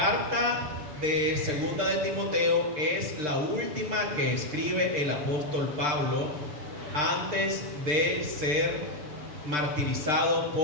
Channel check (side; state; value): left; late; 6.7 ms